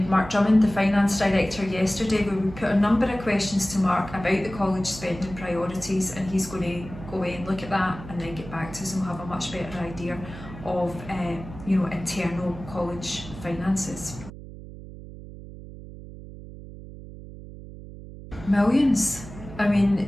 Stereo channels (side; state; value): right; noise; hum, 14 dB below the sound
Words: Mark Drummond, the Finance Director, yesterday, where we put a number of questions to Mark about the college spending priorities, and he's going to go away and look at that and then get back to us, and we'll have a much better idea of internal college finances. Millions. I mean,